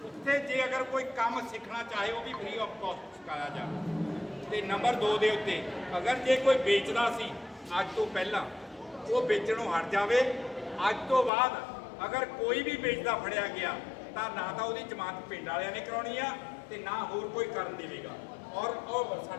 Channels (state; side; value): drops out; right; at 11.3 s